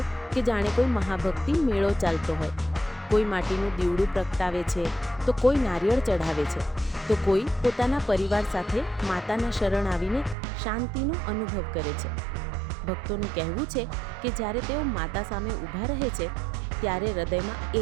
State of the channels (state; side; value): drops out; left; at 10.4 s